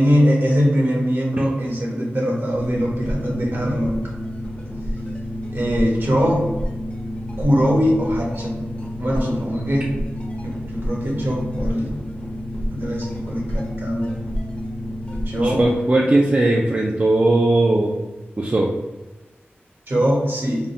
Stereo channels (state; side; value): normal; both; correlation 0.94